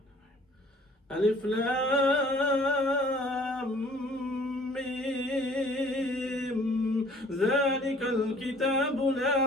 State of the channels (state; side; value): normal; both; correlation 0.54